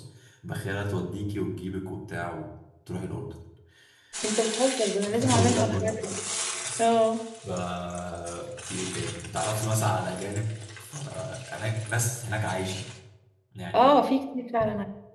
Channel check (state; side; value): identical; both; correlation 1.00